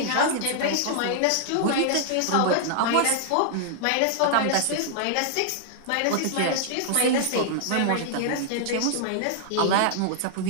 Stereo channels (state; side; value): different; both; correlation -0.01